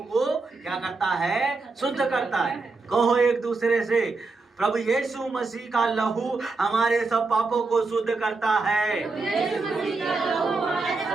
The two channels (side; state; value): left; quieter; 3.8 dB